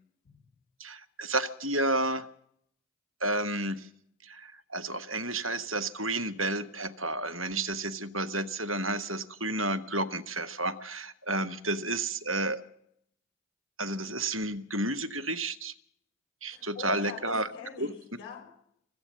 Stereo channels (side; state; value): both; normal; correlation -0.06